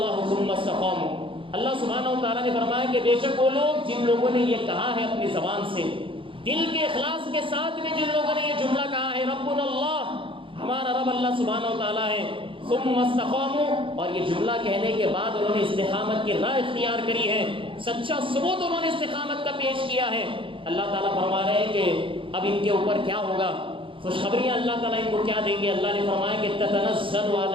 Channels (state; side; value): late; left; 0.25 ms